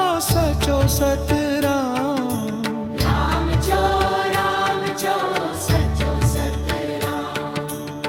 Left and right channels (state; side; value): identical; both; correlation 1.00